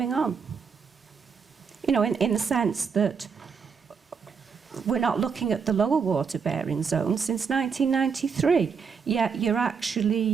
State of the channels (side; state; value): left; quieter; 6.0 dB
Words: on. In the sense that we're not looking at the lower water bearing zone since 1993, yet you're